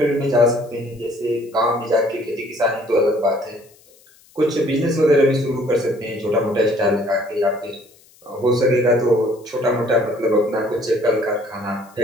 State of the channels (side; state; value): left; noise; hiss, 29 dB below the sound